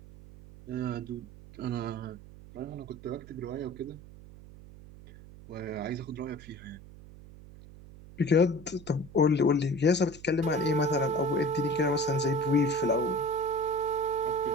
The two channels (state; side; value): noise; right; hum, 18 dB below the sound